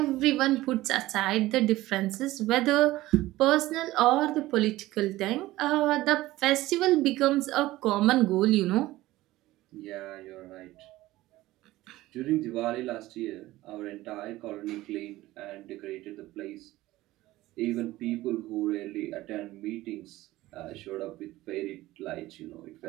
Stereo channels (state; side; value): quieter; left; 17.2 dB